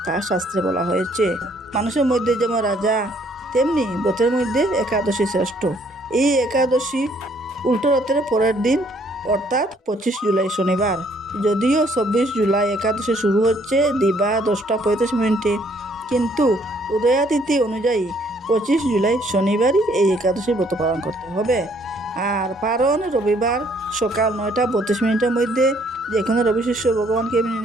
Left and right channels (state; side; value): normal; both; correlation 0.65